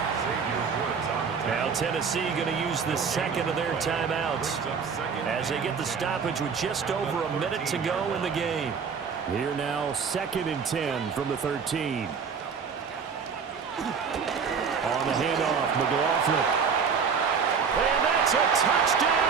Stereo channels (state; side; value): quieter; left; 6.1 dB